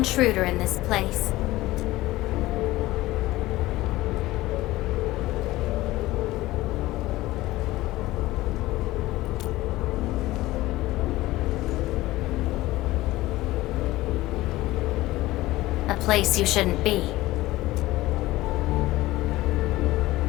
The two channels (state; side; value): quieter; right; 17.8 dB